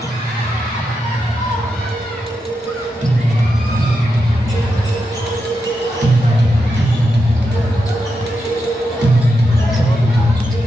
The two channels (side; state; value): both; normal; correlation 0.86